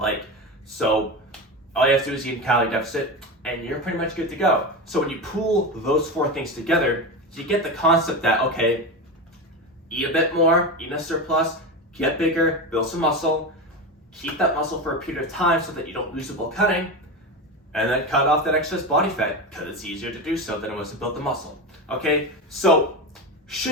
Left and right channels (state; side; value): normal; both; correlation 0.21